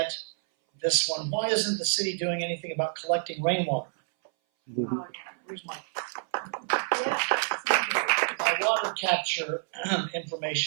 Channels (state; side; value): silent; left; 59 dB below the other